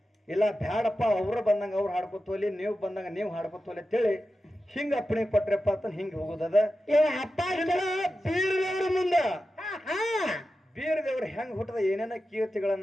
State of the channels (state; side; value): normal; both; correlation 0.92